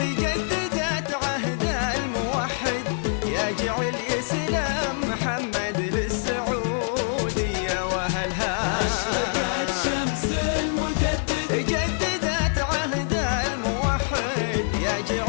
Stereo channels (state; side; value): silent; right; digital silence